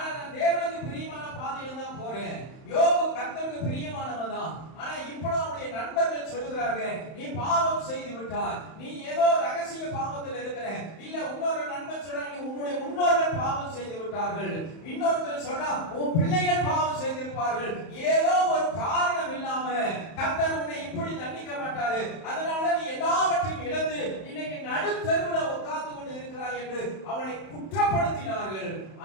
நான் தேவனுக்கு பிரியமான பாதையில தான் போறேன். யோபு கர்த்தருக்கு பிரியமானவன் தான். ஆனா இப்போ அவருடைய நண்பர்கள் சொல்லுகிறாங்க, நீ பாவம் செய்து விட்டாய், நீ ஏதோ ரகசிய பாவத்தில் இருக்கிற. இல்ல இன்னொரு நண்பன் சொல்றா, நீ உன்னுடைய முன்னோர்கள் பாவம் செய்து விட்டார்கள். இன்னொருத்தர் சொல்றா, உன் பிள்ளைகள் பாவம் செய்திருப்பார்கள். ஏதோ ஒரு காரணம் இல்லாம கர்த்தர் உன்னை இப்படி தண்டிக்க மாட்டாரு. அதனால நீ எல்லாவற்றையும் இழந்து இன்னைக்கு நடுத்தருவுல உட்கார்ந்து கொண்டு இருக்கிறாய் என்று அவனை குற்றப்படுத்தினார்கள்.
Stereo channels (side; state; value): right; late; 31 ms